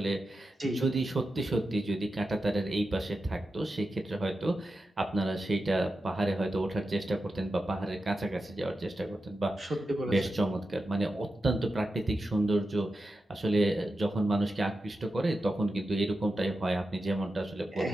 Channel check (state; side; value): normal; both; correlation 0.90